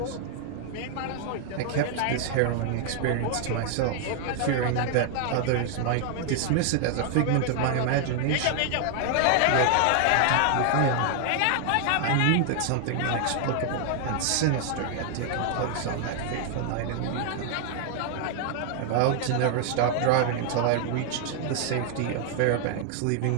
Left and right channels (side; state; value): both; different; correlation 0.00